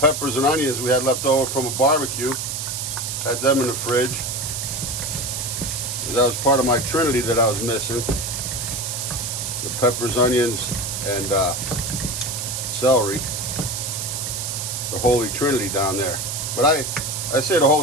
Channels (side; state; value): right; noise; hiss, 4 dB below the sound